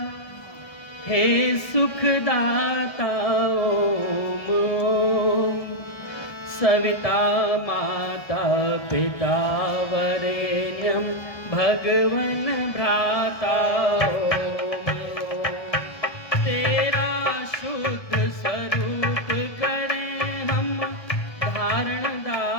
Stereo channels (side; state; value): right; late; 1.2 ms